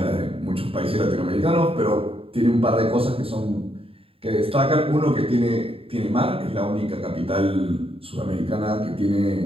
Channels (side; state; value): left; late; 0.27 ms